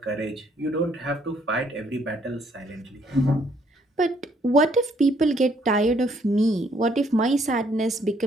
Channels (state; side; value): normal; both; correlation 0.67